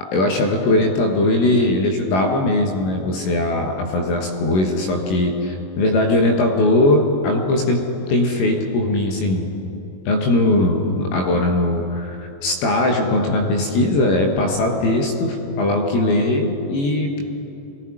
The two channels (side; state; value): right; late; 21 ms